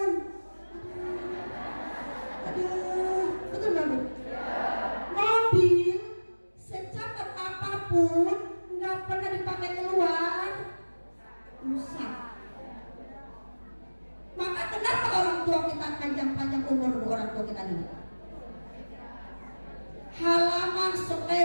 Aduh, betul nggak Bu? Mobil secepat apapun nggak pernah dipakai keluar, rusak. Maka kenapa orang tua kita panjang-panjang umur orang tua kita ini? Halaman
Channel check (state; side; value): inverted; both; correlation -1.00